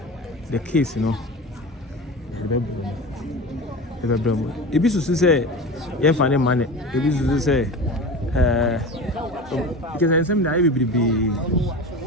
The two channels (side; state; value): both; normal; correlation 0.31